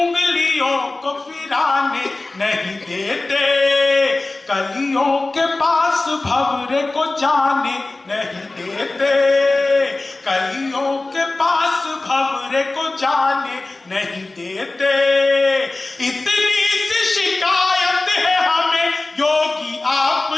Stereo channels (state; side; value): quieter; right; 3.1 dB